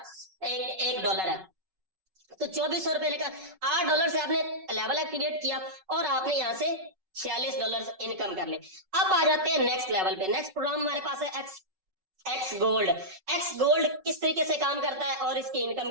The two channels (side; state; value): left; late; 5.3 ms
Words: एक डॉलर है। तो 2400 रुपए लेकर $8 से आपने लेवल एक्टिवेट किया और आपने यहाँ से $46 इनकम कर ले। अब आ जाते हैं नेक्स्ट लेवल पे। नेक्स्ट प्रोग्राम हमारे पास है एक्स गोल्ड। एक्स गोल्ड किस तरीके से काम करता है और इसकी इनकम